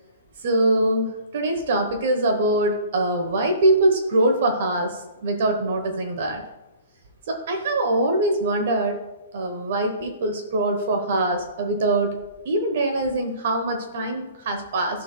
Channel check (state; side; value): inverted; both; correlation -0.51